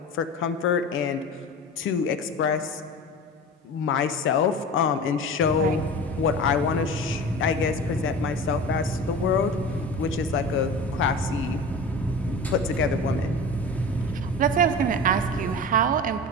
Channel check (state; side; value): normal; both; correlation 0.33